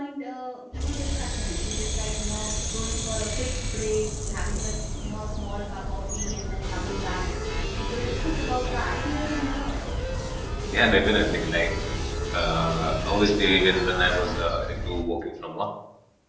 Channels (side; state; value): both; identical; correlation 1.00